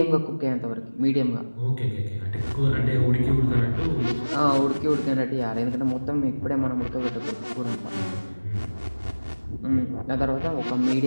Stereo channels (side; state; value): both; inverted; correlation -1.00